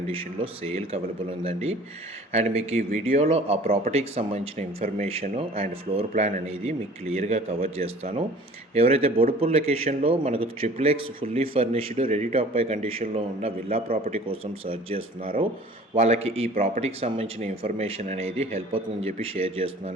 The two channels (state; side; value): normal; both; correlation 0.48